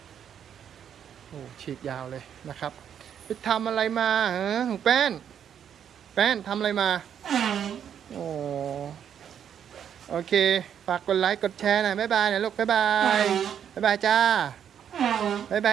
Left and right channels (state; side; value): quieter; left; 8.8 dB